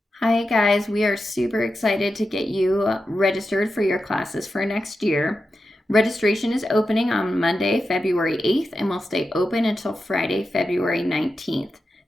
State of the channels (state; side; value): normal; both; correlation 0.90